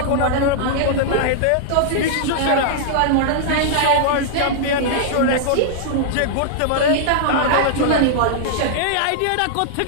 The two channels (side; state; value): both; different; correlation -0.01